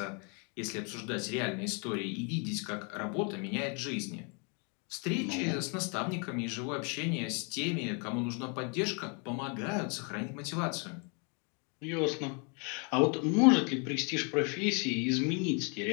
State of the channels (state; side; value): quieter; right; 35.7 dB